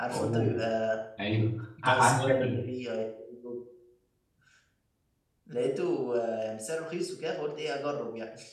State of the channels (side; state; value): both; identical; correlation 1.00